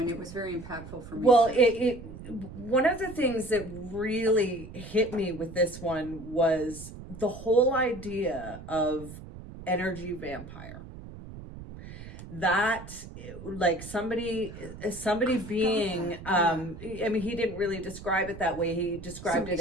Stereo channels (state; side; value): noise; right; rumble, 13 dB below the sound